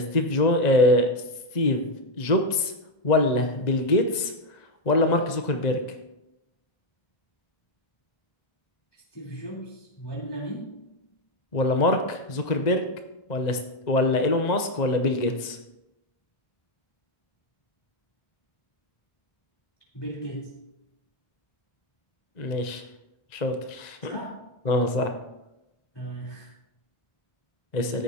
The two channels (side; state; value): right; late; 1.9 ms